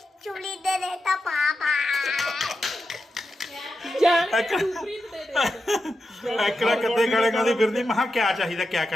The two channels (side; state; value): both; normal; correlation 0.89